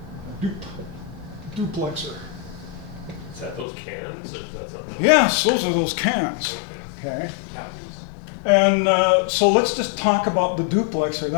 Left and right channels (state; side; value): drops out; right; at 3.7 s